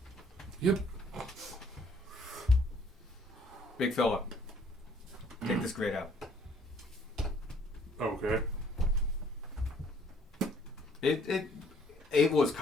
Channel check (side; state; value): both; normal; correlation 0.61